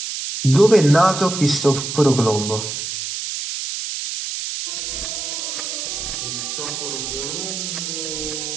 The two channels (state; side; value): noise; right; hiss, 5 dB below the sound